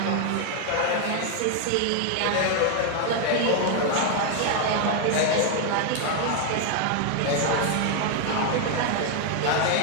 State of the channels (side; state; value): both; different; correlation 0.01